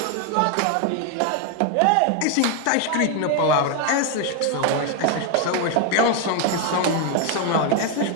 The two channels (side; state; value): both; different; correlation 0.01